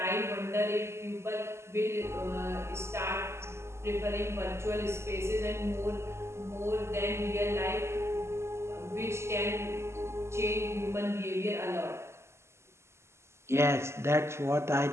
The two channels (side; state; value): left; late; 0.13 ms